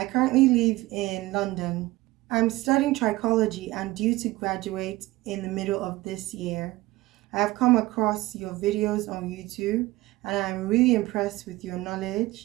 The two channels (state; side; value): quieter; left; 19.2 dB